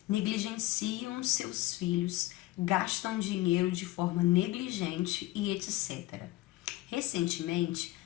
negligenciam seus filhos, gastam dinheiro de forma negligente e etc. Recentemente,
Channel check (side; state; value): right; quieter; 17.7 dB